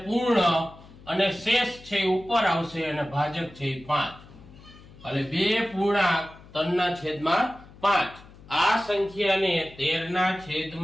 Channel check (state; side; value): noise; left; hum, 21 dB below the sound